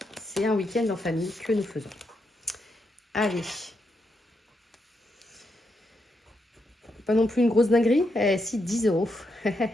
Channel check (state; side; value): normal; both; correlation 0.82